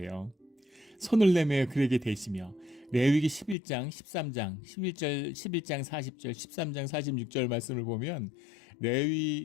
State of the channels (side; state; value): right; drops out; at 3.6 s